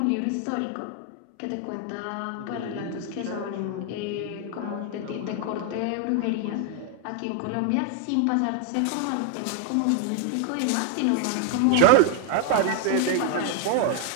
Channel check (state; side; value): different; both; correlation 0.00